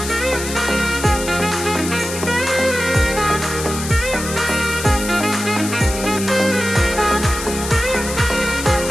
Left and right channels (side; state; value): left; noise; hiss, 8 dB below the sound